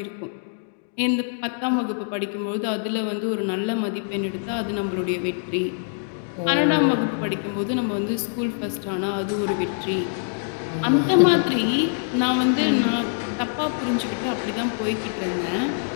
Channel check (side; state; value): right; silent; digital silence